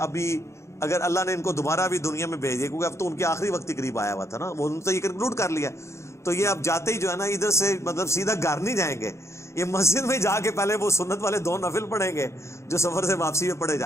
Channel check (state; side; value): late; right; 0.14 ms